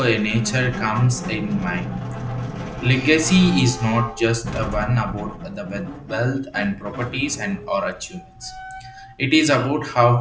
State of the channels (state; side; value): identical; both; correlation 1.00